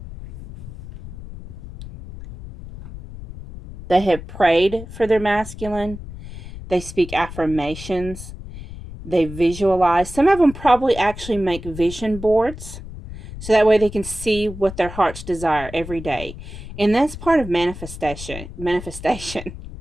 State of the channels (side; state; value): left; noise; rumble, 12 dB below the sound